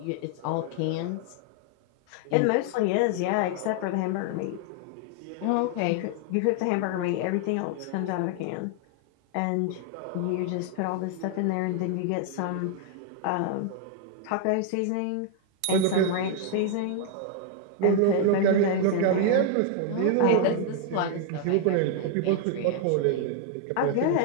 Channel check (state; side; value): different; both; correlation 0.00